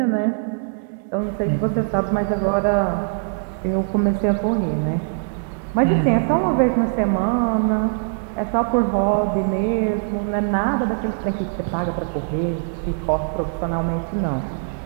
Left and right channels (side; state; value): left; silent; 60 dB below the other